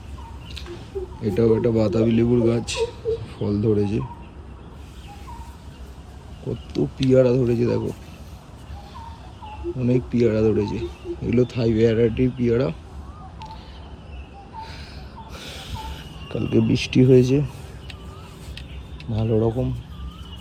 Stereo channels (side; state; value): both; identical; correlation 1.00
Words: এটাও একটা বাতাবি লেবুর গাছ, ফল ধরেছে। কত পিয়ারা ধরেছে দেখো, অনেক পিয়ারা ধরেছে। এগুলো থাই ভ্যারাইটির পিয়ারা। কালকে বৃষ্টি হয়েছে ভালো রকম।